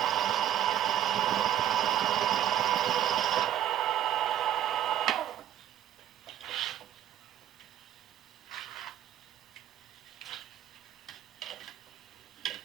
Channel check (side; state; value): left; quieter; 11.2 dB